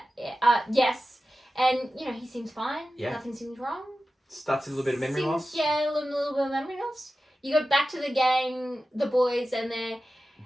Yes, and he seems fine. Yeah, nothing seems wrong. Starts a little bit of memory loss. Yeah, a little bit of memory loss. You go back to the gang, the boys, and they're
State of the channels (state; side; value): normal; both; correlation 0.94